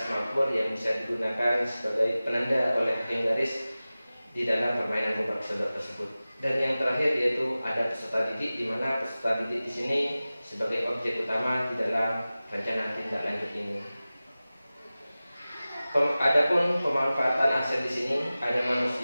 yang bisa digunakan sebagai penanda oleh hakim garis di dalam permainan gobak sodor tersebut. Dan yang terakhir yaitu ada peserta didik, di mana peserta didik di sini sebagai objek utama di dalam rencana tindak lanjut ini. Adapun pemanfaatan aset di sini ada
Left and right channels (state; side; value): inverted; both; correlation -0.97